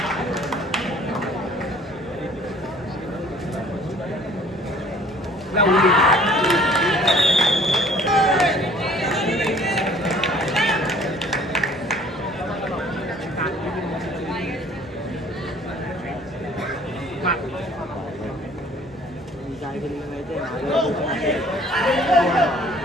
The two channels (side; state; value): both; normal; correlation 0.53